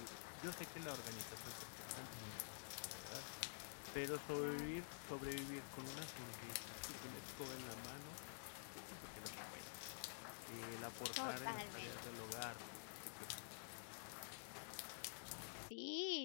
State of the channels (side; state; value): right; silent; digital silence